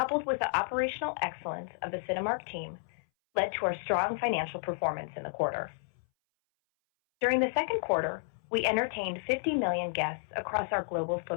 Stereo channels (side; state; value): right; silent; 57 dB below the other